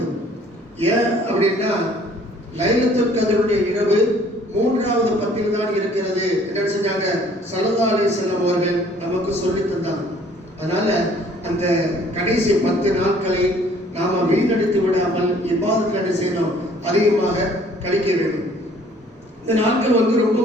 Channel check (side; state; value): both; normal; correlation 0.57